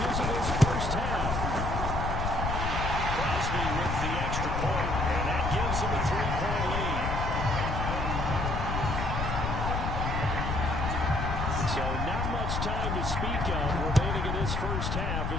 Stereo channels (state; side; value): noise; left; rumble, 1 dB below the sound